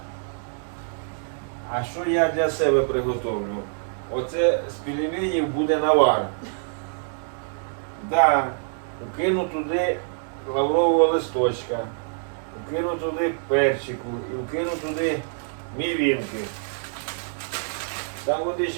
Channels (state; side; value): silent; left; digital silence